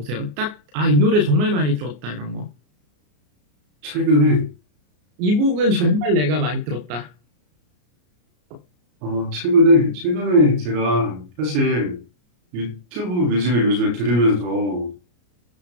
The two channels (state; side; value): late; left; 33 ms